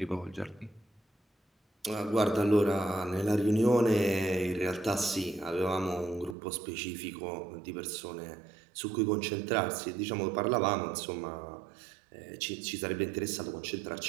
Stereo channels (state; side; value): drops out; left; at 6.4 s